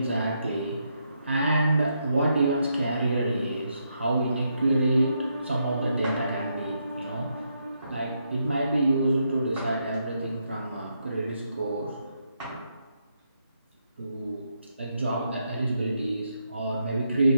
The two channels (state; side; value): inverted; both; correlation -0.80